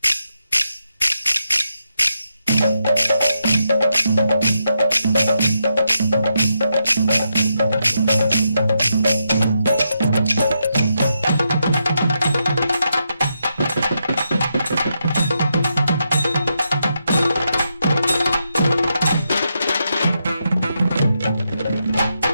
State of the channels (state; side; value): inverted; both; correlation -0.83